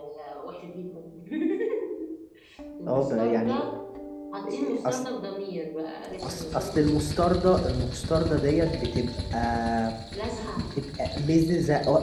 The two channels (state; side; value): identical; both; correlation 1.00